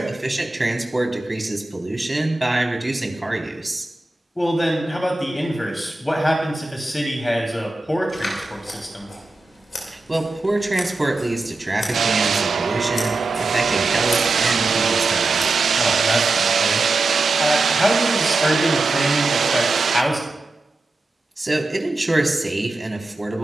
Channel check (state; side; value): quieter; left; 3.0 dB